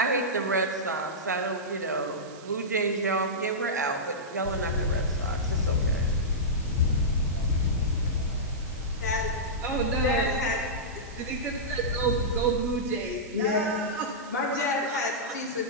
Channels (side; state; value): right; noise; hiss, 21 dB below the sound